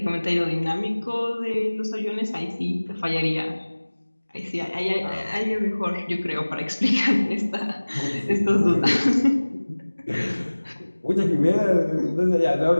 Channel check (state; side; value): inverted; both; correlation -1.00